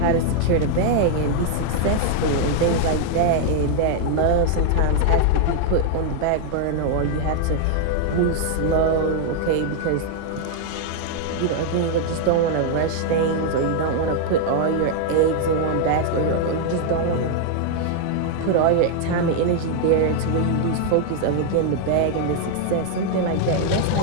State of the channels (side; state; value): both; different; correlation 0.00